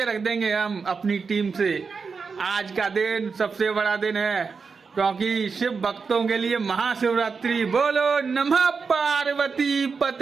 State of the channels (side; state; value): left; quieter; 5.1 dB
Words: रख देंगे हम अपनी टीम से। आज का दिन सबसे बड़ा दिन है क्योंकि शिव भक्तों के लिए महाशिवरात्रि। बोलो नमः पार्वती